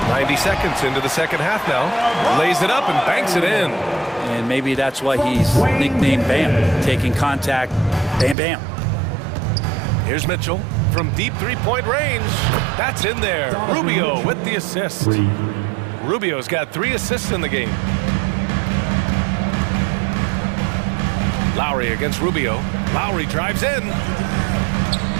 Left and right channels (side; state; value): left; drops out; at 8.3 s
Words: 90 seconds into the second half now. Lays it up and banks it in. And maybe that's why he's nicknamed Bam. Taking contact, bam, bam. Here's Mitchell from deep three-point range. That's in there. Rubio with the assist. Rubio's got 3 assists in the game. Lowry against Rubio. Lowry drives in.